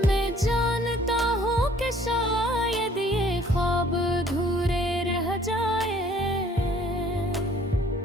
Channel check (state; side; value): normal; both; correlation 0.57